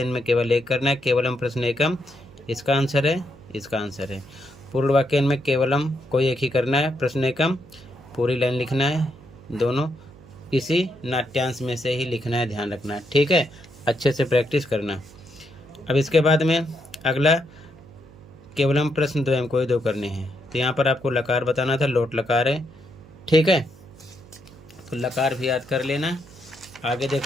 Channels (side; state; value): right; noise; hum, 22 dB below the sound